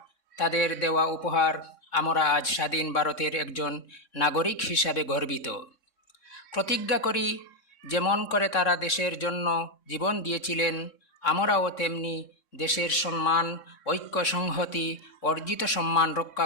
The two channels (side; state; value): right; late; 3.6 ms